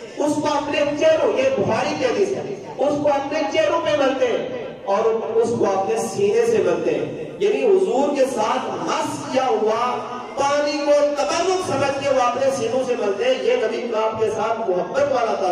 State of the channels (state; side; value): identical; both; correlation 1.00